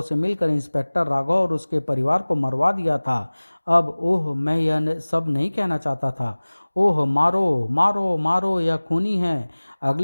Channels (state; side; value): inverted; both; correlation -1.00